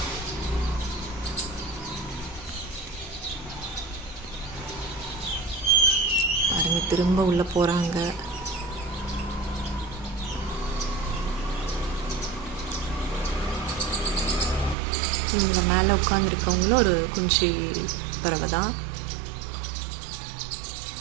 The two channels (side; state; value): left; drops out; at 14.8 s